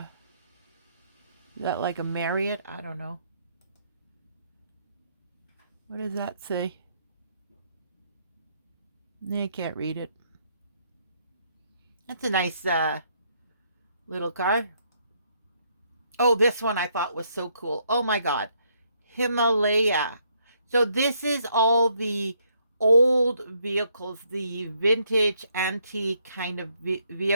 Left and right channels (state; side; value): inverted; both; correlation -0.71